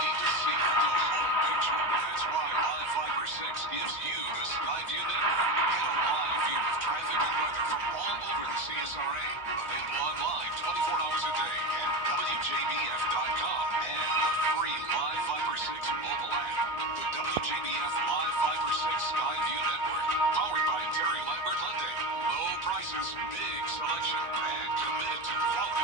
need to see the whole picture. That's why Live Fiber 6 gives you the Skyview network. Get a live view of traffic and weather from all over the CSRA. Available online 24 hours a day at WJBF.com and the free Live Fiber 6 mobile app. The WJBF Live Fiber 6 Skyview network. Powered by Terry Lambert Hyundai. Low prices, big selection, and committed to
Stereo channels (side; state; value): right; late; 2.0 ms